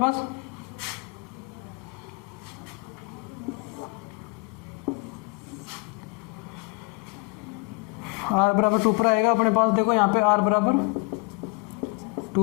r बराबर 2 पर आएगा अपने पास। देखो यहाँ पे r बराबर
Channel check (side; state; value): right; quieter; 26.8 dB